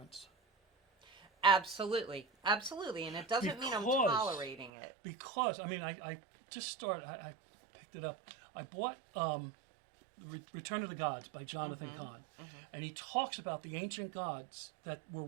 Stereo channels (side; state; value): left; drops out; at 4.7 s